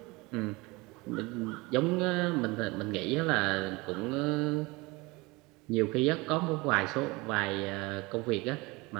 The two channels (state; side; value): quieter; left; 23.9 dB